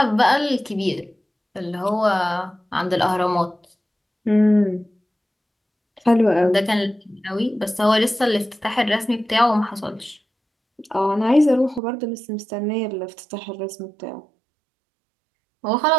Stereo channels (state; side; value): drops out; left; at 11.8 s